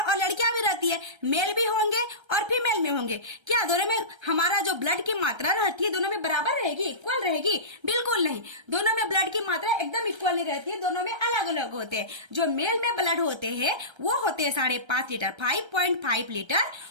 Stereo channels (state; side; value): late; left; 1.3 ms